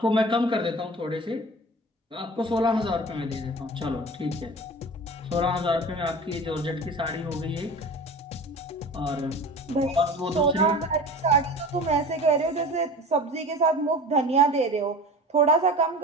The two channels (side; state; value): both; normal; correlation 0.36